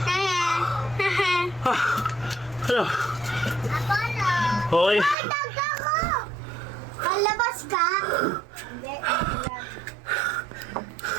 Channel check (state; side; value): drops out; left; at 5.2 s